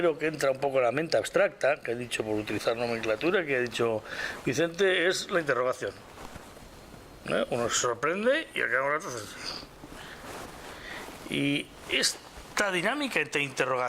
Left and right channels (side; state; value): both; identical; correlation 1.00